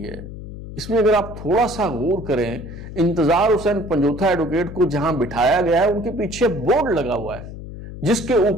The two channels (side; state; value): left; noise; hum, 11 dB below the sound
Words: है इसमें अगर आप थोड़ा सा गौर करें, इंतजार हुसैन पंजोथा एडवोकेट को जहां बिठाया गया है उनके पीछे बोर्ड लगा हुआ है जिसके